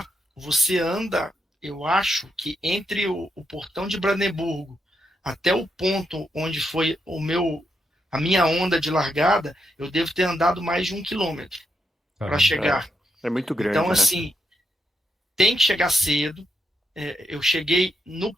você anda, eu acho que entre o portão de Brandemburgo até o ponto onde foi a minha onda de largada, eu devo ter andado mais de 1 quilômetro para chegar. É muito grande, Então, né? assim, tem que chegar cedo. Eu cheguei no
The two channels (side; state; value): both; normal; correlation 0.81